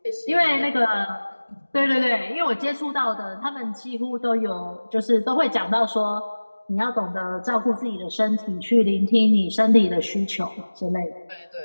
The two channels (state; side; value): inverted; both; correlation -1.00